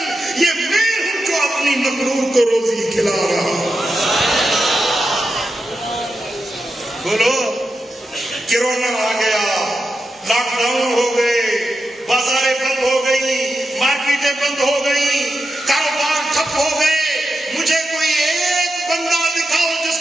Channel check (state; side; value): normal; both; correlation 0.88